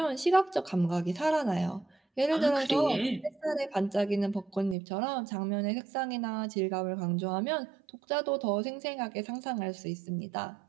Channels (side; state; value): left; drops out; at 4.8 s